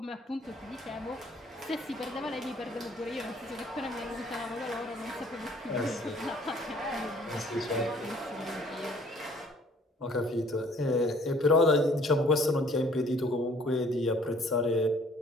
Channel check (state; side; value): normal; both; correlation 0.57